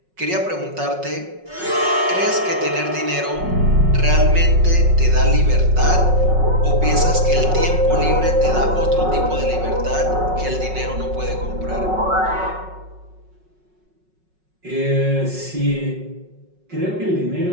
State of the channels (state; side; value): late; left; 5.4 ms